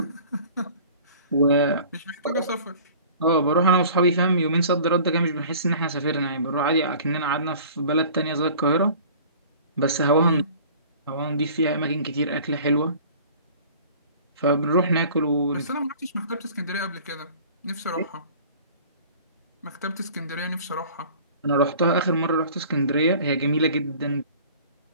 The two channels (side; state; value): both; inverted; correlation -0.46